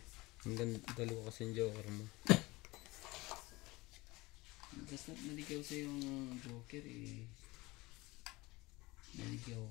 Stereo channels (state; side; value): quieter; right; 21.8 dB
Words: Hanggang dalawa kasi yung joker mo. Basta naligaw sa yung joker eh. Naligaw.